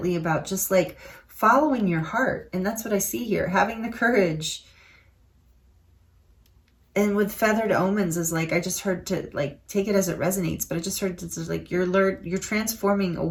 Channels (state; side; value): identical; both; correlation 1.00